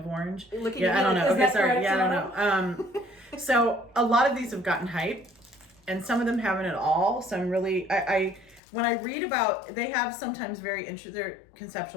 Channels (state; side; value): drops out; right; at 8.6 s